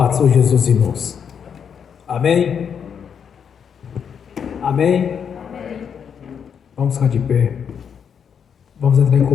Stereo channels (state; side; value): quieter; right; 7.4 dB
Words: do Senhor Jesus, irmãos. Amém? Amém? Vamos ficar de pé. Vamos entrar em